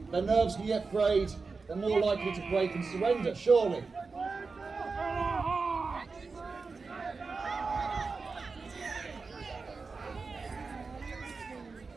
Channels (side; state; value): left; quieter; 4.4 dB